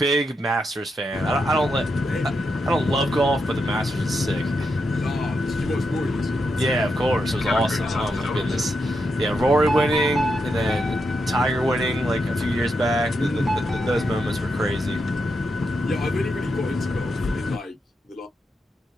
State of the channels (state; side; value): normal; both; correlation 0.84